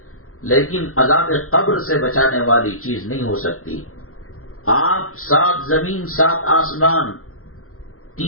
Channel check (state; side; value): late; right; 0.63 ms